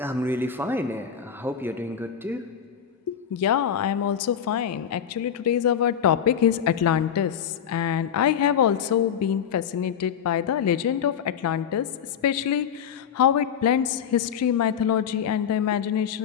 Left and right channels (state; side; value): quieter; right; 8.3 dB